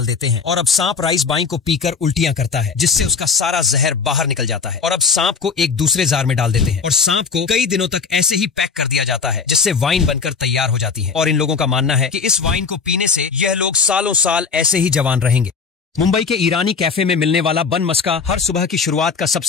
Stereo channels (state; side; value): quieter; right; 5.4 dB